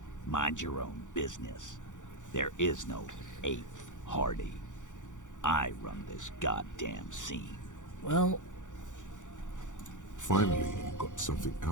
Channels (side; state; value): right; late; 0.86 ms